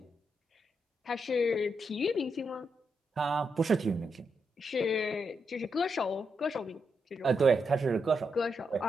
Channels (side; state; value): both; normal; correlation 0.82